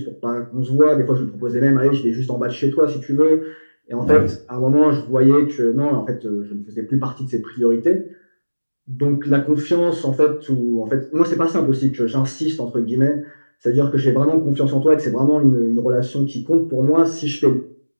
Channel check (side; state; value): both; inverted; correlation -1.00